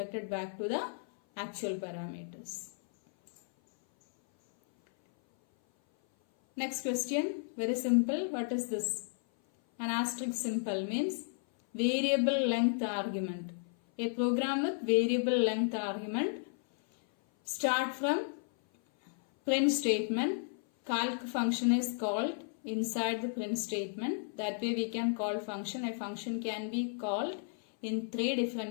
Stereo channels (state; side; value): silent; right; 55 dB below the other